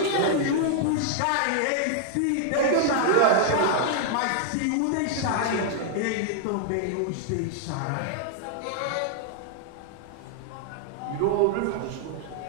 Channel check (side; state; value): both; different; correlation -0.01